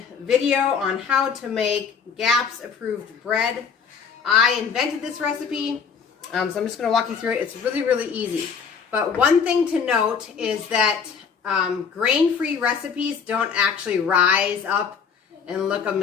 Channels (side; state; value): right; quieter; 6.3 dB